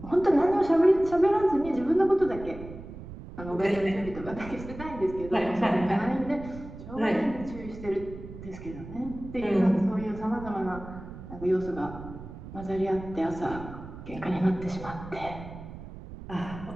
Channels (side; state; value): right; noise; rumble, 13 dB below the sound